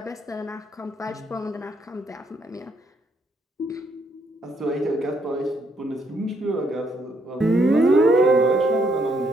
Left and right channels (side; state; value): both; normal; correlation 0.72